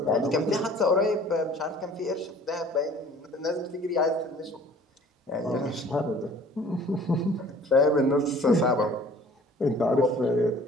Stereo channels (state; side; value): normal; both; correlation 0.51